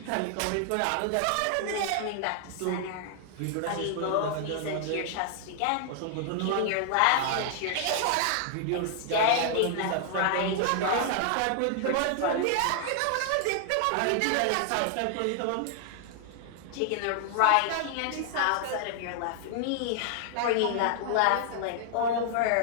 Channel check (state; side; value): different; both; correlation 0.00